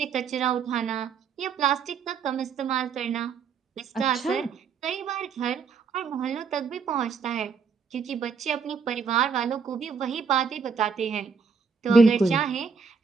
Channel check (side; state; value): left; quieter; 5.6 dB